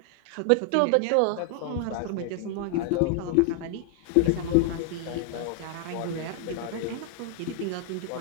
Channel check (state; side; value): different; both; correlation 0.00